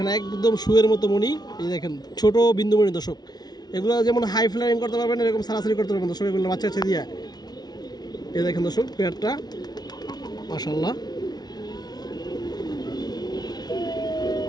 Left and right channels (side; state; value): right; late; 0.19 ms